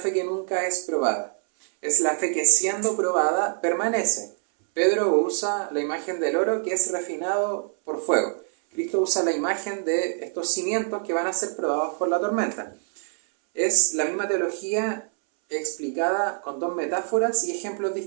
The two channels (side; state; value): left; silent; 62 dB below the other